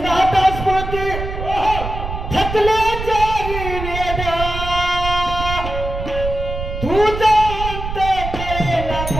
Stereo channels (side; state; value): right; noise; rumble, 6 dB below the sound